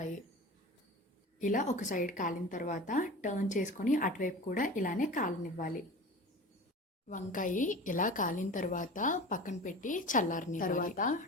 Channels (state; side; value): normal; both; correlation 0.35